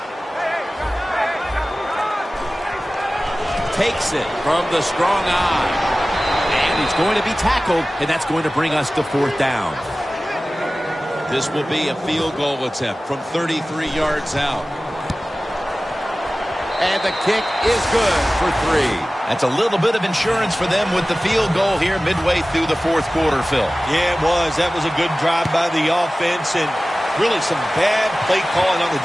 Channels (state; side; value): normal; both; correlation 0.97